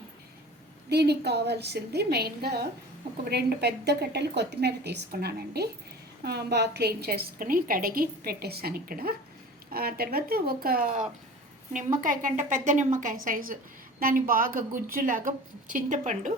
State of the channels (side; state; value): both; normal; correlation 0.39